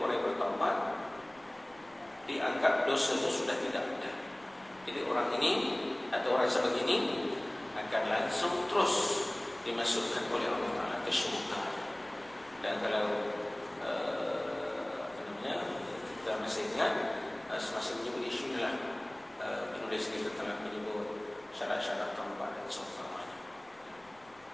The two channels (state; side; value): noise; left; rumble, 29 dB below the sound